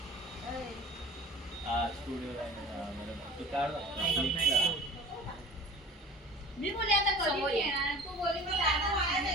मी बोले आता कधी येणार तू बोली मी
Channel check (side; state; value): both; normal; correlation 0.42